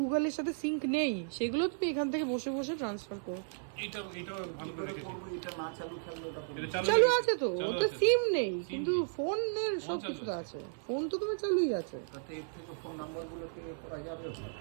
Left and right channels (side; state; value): left; silent; 55 dB below the other